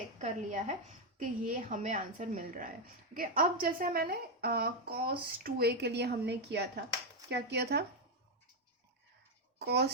कर लिया है कि ये हमें आंसर मिल रहा है। ओके अब जैसे मैंने कॉस टू ए के लिए हमने किया था, क्या किया था,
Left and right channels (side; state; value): both; normal; correlation 0.04